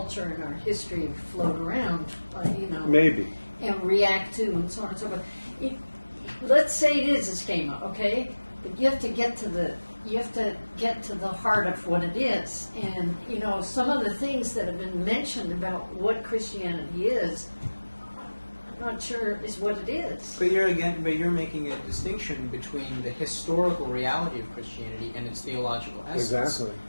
and our history float around, Maybe. and react to, and so on and so forth. Let's say it is a schema, okay? But you have to get to the heart of what it is. And some of the things that have been mentioned about what Christianity is, I'm not sure is what it is. But you're making a distinction between the historical reality of Christianity and its theological essence, Exactly.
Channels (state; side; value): inverted; both; correlation -1.00